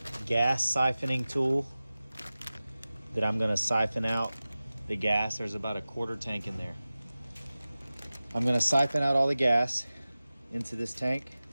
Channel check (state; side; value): inverted; both; correlation -0.97